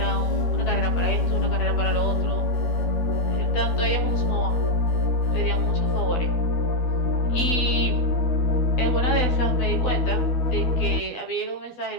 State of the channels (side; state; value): right; late; 12 ms